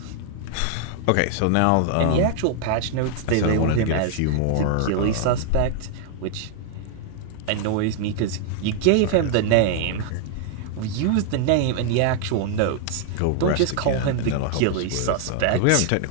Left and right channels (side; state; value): both; different; correlation 0.00